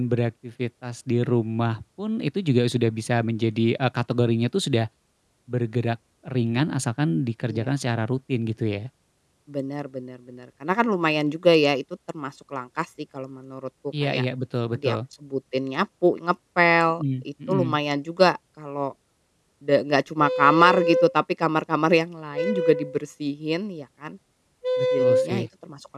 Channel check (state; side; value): identical; both; correlation 1.00